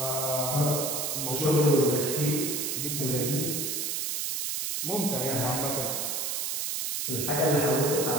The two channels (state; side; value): noise; right; hiss, 1 dB below the sound